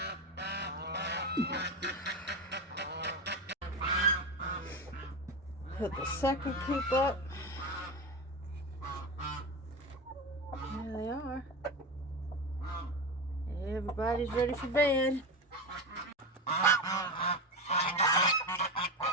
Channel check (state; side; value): normal; both; correlation 0.19